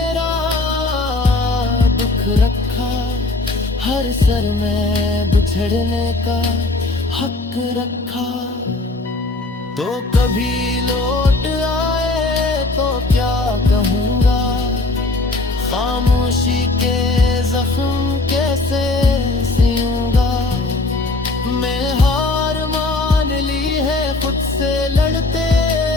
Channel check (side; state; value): right; quieter; 3.1 dB